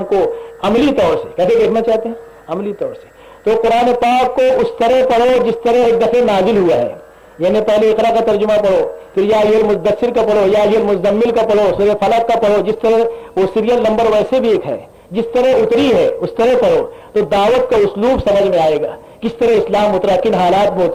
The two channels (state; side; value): identical; both; correlation 1.00